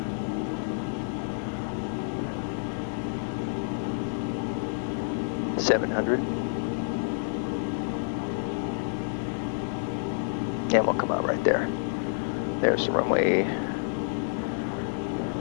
And we'll come out right there. There's the runway.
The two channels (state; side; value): silent; right; digital silence